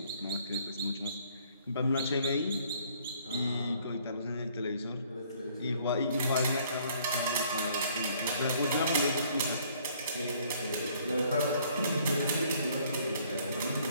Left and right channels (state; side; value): inverted; both; correlation -0.61